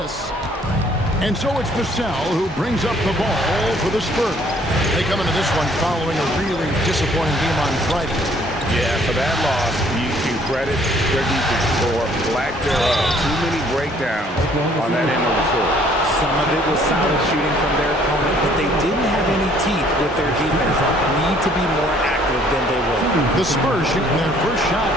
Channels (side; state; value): both; normal; correlation 0.60